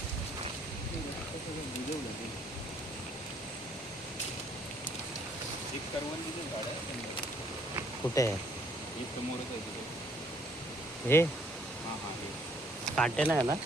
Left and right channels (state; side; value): normal; both; correlation 0.64